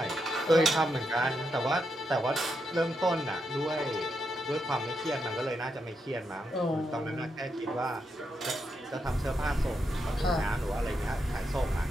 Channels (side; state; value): both; normal; correlation 0.82